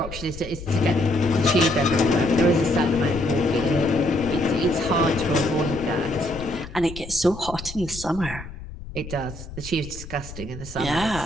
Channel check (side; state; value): left; noise; rumble, 13 dB below the sound